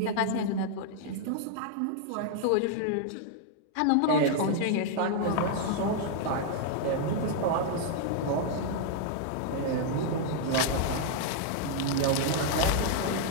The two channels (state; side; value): different; both; correlation -0.01